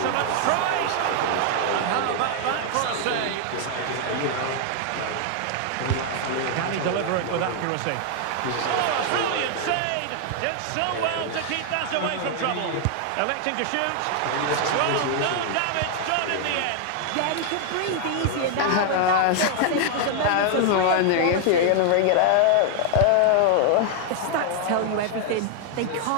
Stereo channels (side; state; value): both; different; correlation 0.00